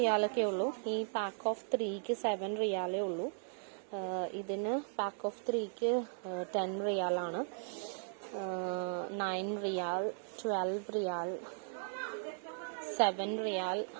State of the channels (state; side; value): silent; left; digital silence